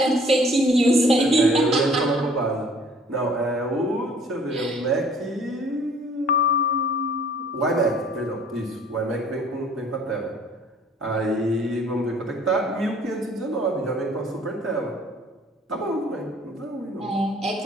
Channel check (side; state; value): both; normal; correlation 0.55